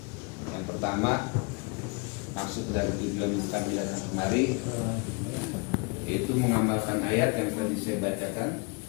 Yang pertama, maksud dan tujuan kami datang kemari yaitu mengamalkan ayat yang tadi saya bacakan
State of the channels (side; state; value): right; quieter; 31.1 dB